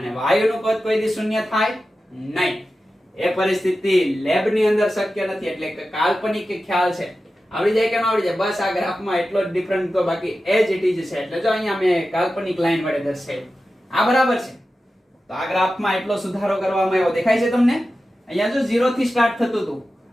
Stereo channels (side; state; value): both; normal; correlation 0.93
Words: વાયુનું કદ કોઈ દી શૂન્ય થાય નહીં. એ પરિસ્થિતિ લેબ ની અંદર શક્ય નથી. એટલે કે કાલ્પનિક ખ્યાલ છે. આવડી જાય કે ન આવડી જાય? બસ આ ગ્રાફમાં એટલો જ ડિફરન્ટ તો બાકી એજ ઇટ ઇઝ છે. એટલે જો અહીંયા મેં કાલ્પનિક લાઈન વડે દર્શાવ્યું. આ બરાબર છે. તો આ ગ્રાફમાં એટલો સુધારો કરવામાં આવ્યો. દેખાય છે તમને? અહીંયા જો 0 થી સ્ટાર્ટ થતું હતું.